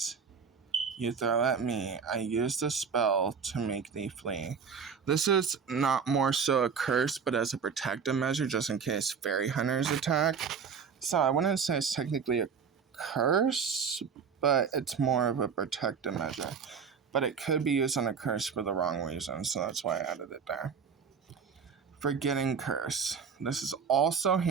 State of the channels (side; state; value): left; quieter; 6.3 dB